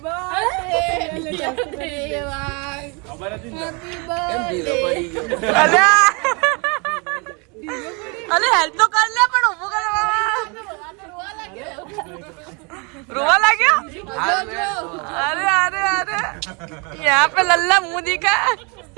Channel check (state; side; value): quieter; left; 32.0 dB